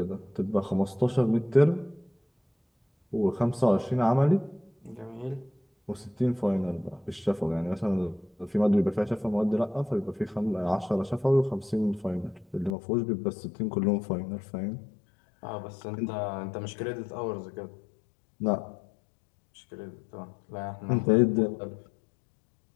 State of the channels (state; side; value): drops out; right; at 12.8 s